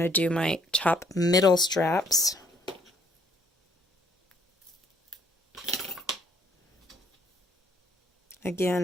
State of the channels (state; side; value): normal; both; correlation 0.65